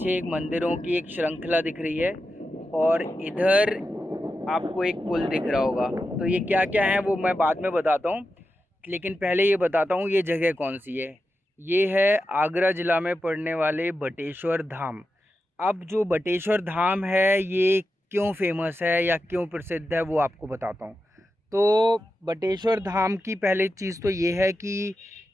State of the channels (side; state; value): both; normal; correlation 0.90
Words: एक मंदिरों की एक श्रृंखला दिख रही है। और इधर आपको एक पुल दिख रहा होगा। तो ये क्या क्या है वो मैं बाद में बताता हूँ, लेकिन पहले ये बताता हूँ ये जगह कौन सी है। ये है आगरा ज़िला में पड़ने वाले बटेश्वर धाम। अब जो बटेश्वर धाम है ये क्यों फेमस है या क्यों प्रसिद्ध है वो आपको बताता हूँ। तो बटेश्वर धाम की पहली चीज़ तो ये है कि